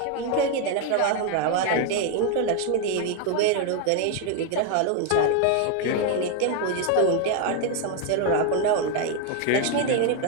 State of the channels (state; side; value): different; both; correlation 0.01